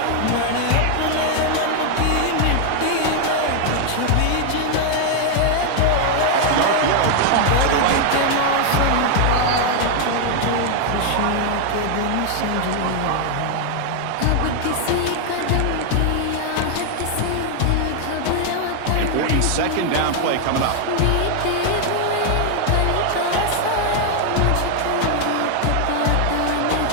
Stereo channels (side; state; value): both; different; correlation 0.00